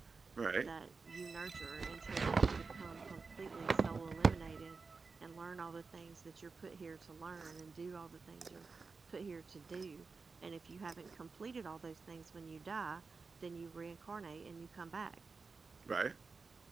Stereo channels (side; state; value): left; quieter; 4.5 dB